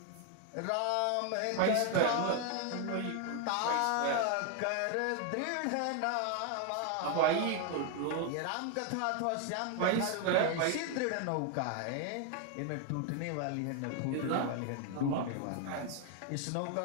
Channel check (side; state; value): both; different; correlation 0.00